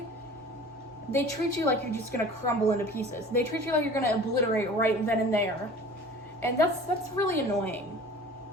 they treat you like you're just gonna crumble into pieces. They treat you like you're gonna obliterate right then and there. And that's really annoying,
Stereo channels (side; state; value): both; normal; correlation 0.43